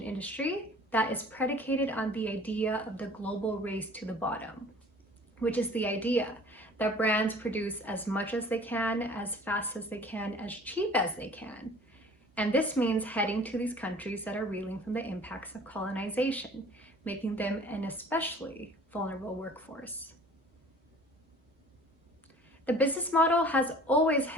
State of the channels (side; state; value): both; normal; correlation 0.48